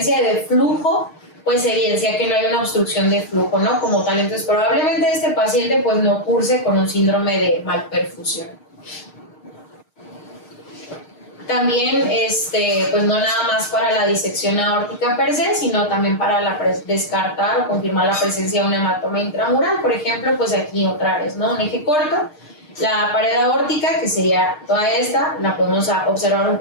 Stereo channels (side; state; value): right; late; 6.5 ms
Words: de flujo, pues evidencia que no hay una obstrucción de flujo, ¿no? Como tal, entonces probablemente este paciente pues no curse con un síndrome de malperfusión. También, pues no nada más para la disección aórtica per se, sino también para descartar o confirmar la presencia de un hematoma intramural. Por ejemplo, pues aquí otra vez, ¿no? Un eje corto, la pared aórtica, que sería toda esta, la podemos observar un